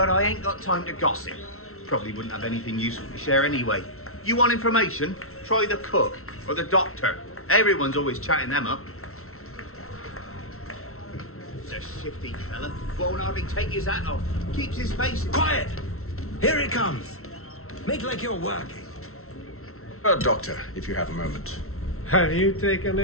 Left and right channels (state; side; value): late; right; 0.63 ms